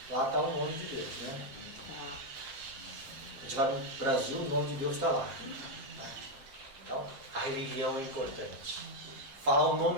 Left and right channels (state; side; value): late; left; 7.5 ms